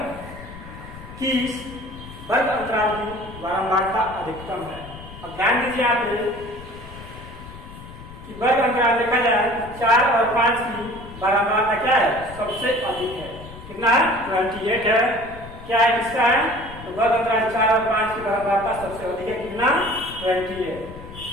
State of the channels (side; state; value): left; noise; rumble, 15 dB below the sound